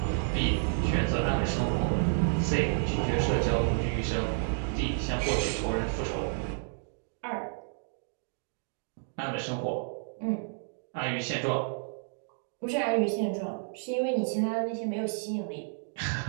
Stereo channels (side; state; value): left; silent; digital silence